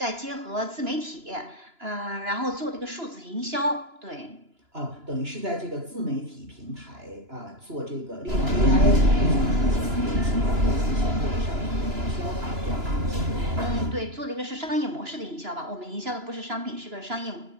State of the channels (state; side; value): late; left; 2.9 ms